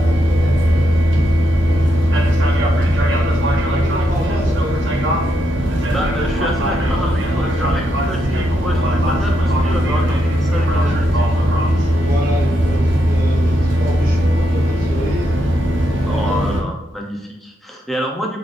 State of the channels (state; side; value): normal; both; correlation 0.81